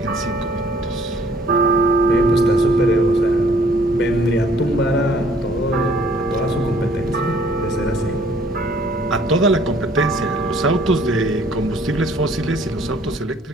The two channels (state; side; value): normal; both; correlation 0.59